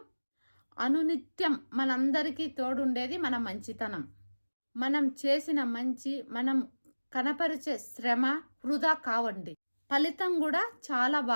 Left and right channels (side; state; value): both; inverted; correlation -1.00